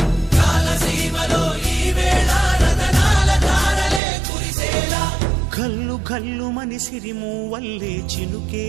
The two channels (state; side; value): drops out; left; at 4.0 s